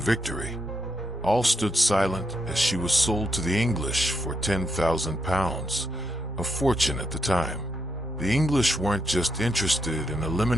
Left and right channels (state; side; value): normal; both; correlation 0.80